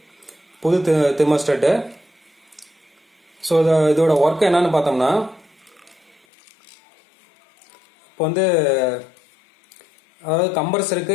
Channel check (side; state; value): right; drops out; at 6.2 s